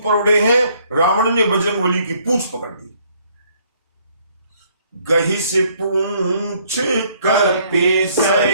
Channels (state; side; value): inverted; both; correlation -0.65